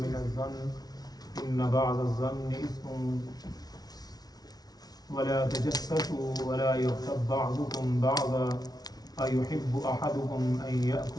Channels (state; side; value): late; right; 0.19 ms